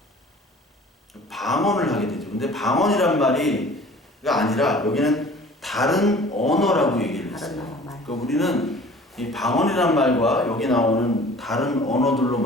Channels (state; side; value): normal; both; correlation 0.47